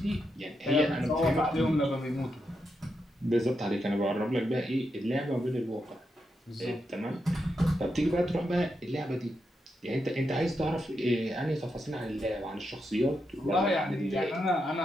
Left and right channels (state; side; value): normal; both; correlation 0.84